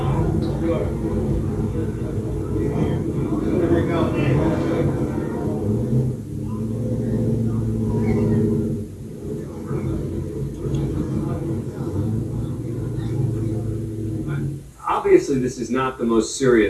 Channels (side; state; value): both; identical; correlation 1.00